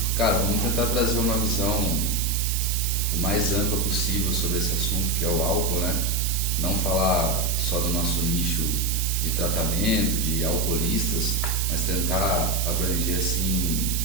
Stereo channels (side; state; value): right; noise; hiss, 3 dB below the sound